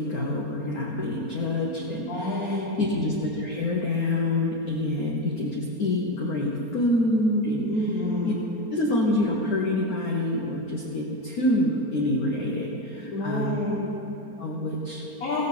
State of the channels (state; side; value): late; right; 4.3 ms